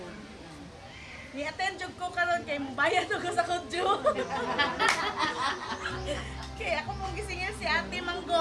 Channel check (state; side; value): identical; both; correlation 1.00